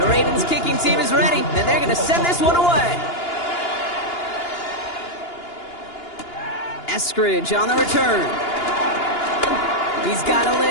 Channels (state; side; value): late; right; 2.9 ms